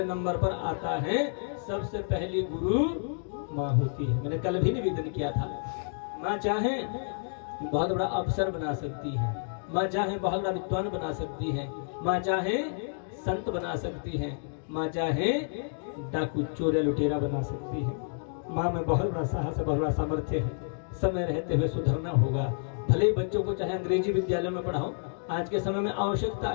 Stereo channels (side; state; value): right; silent; digital silence